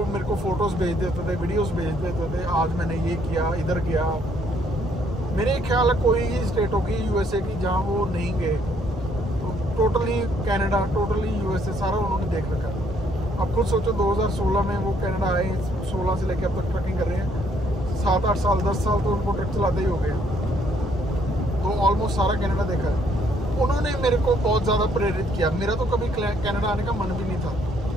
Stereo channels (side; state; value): both; normal; correlation 0.67